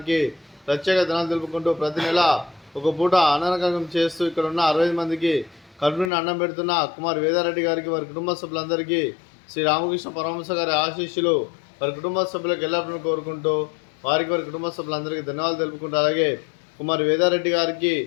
ప్రత్యేక ధనాలు తెలుపుకుంటూ ప్రతి నెల ఒక పూట అన్నగం చేస్తూ ఇక్కడ ఉన్న 60 మందికి కడుపుని అన్నం పెడుతున్న కుమార్ వేదారెడ్డి గారికి వారి కుటుంబ సభ్యులందరికీ శ్రీ రామకృష్ణ పరమహంస గారి ఆశీస్సులు వారి కుటుంబ సభ్యులకు ఎల్లప్పుడూ కోరుకుంటూ వారి కుటుంబ సభ్యులందరికీ ధన్యవాదాలు తెలుపుకుంటూ అలాగే కుమార్ వేదారెడ్డి గారికి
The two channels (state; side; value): drops out; right; at 6.1 s